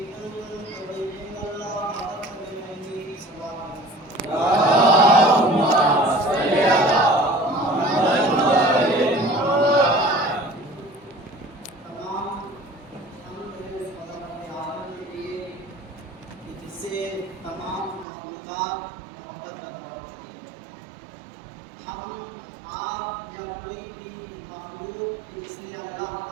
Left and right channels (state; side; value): drops out; left; at 18.1 s